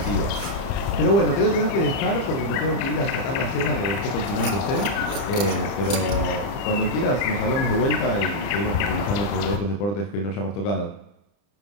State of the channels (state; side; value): late; right; 30 ms